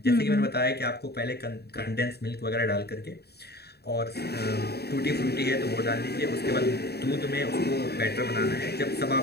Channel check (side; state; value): right; late; 0.47 ms